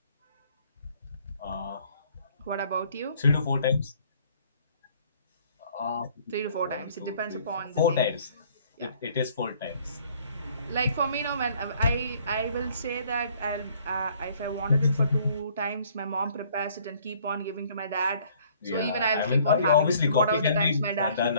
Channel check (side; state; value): both; inverted; correlation -0.59